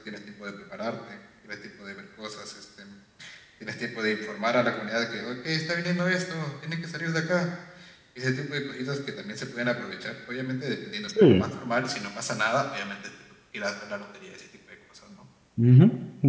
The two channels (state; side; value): identical; both; correlation 1.00